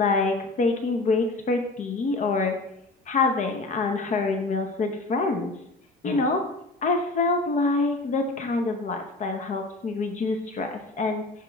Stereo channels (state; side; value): quieter; right; 3.1 dB